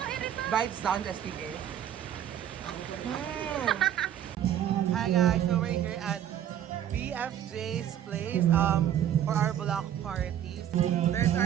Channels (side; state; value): left; quieter; 10.5 dB